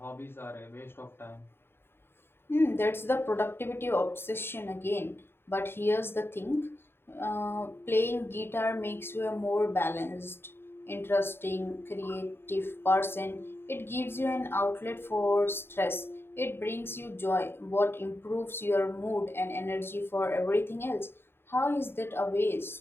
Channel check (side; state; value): right; late; 0.11 ms